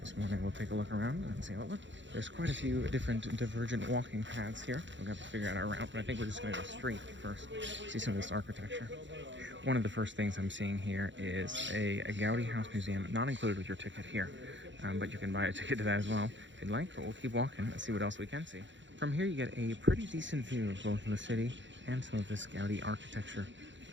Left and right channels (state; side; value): late; left; 0.54 ms